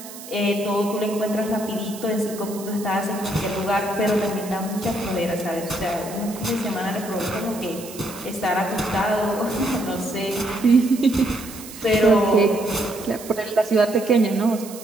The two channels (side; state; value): right; noise; hiss, 15 dB below the sound